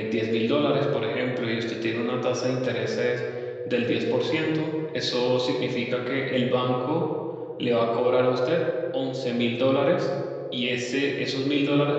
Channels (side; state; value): both; identical; correlation 1.00